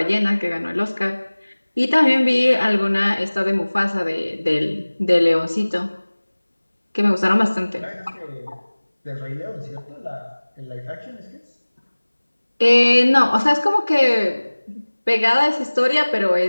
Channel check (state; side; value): inverted; both; correlation -1.00